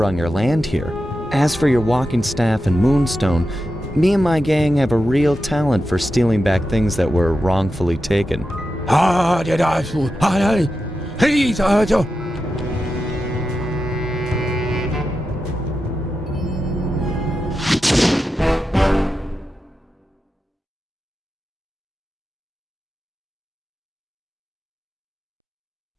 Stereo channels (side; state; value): both; normal; correlation 0.90